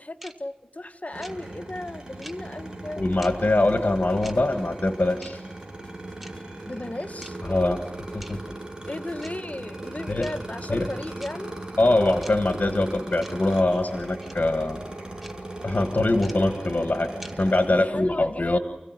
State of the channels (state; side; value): normal; both; correlation 0.94